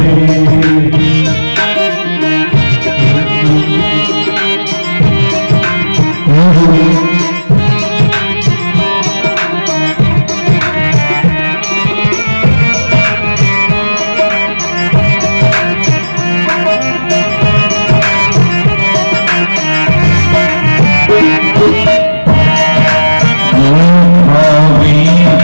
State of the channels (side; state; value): both; inverted; correlation -1.00